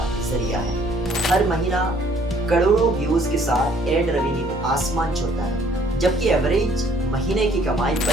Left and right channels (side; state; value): both; normal; correlation 0.61